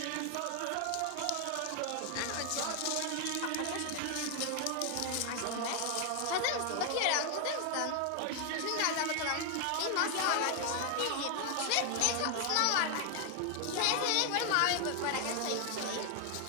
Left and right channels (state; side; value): different; both; correlation 0.00